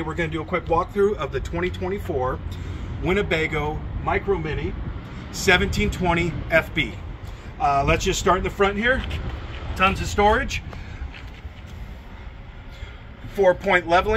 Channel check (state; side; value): identical; both; correlation 1.00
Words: we're going to do a quick walkthrough of the 2024 Winnebago Micro Minnie 1720FB. Let's just start in the front here. Tons of storage. 4-point